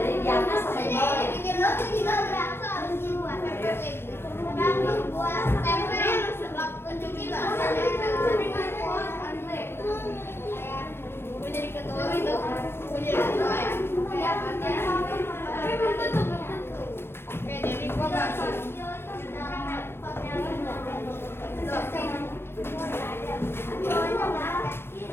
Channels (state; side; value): late; right; 0.12 ms